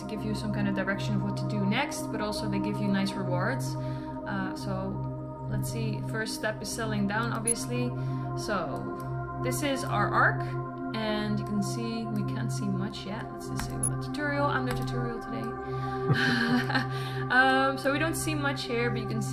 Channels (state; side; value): identical; both; correlation 1.00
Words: give you some kind of direction of what to do next, but also they give you nice rewards. So let's see. First step is settling down, obviously. So this is our arc, and you can see we can't see much yet. Let's just say the tutorial. I'm the tutorial today. So we don't see much here, but you can